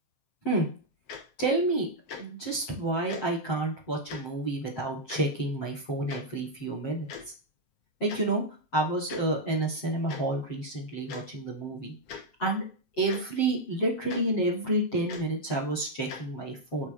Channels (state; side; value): late; right; 7.6 ms